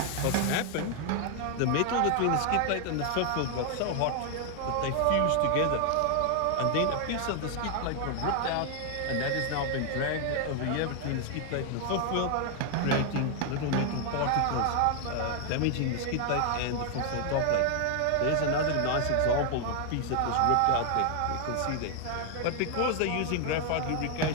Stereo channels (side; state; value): both; different; correlation 0.00